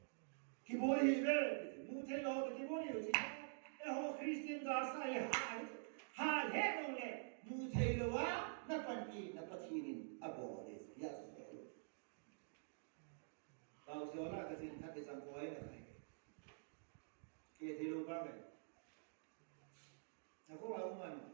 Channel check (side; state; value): left; silent; digital silence